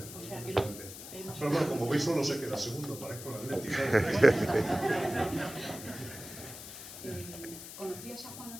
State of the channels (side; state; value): left; noise; hiss, 12 dB below the sound